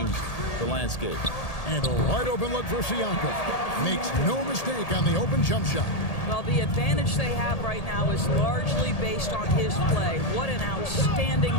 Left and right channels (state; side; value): late; right; 1.8 ms